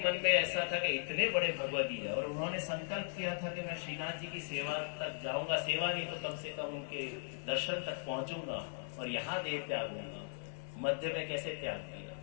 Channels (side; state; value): right; silent; digital silence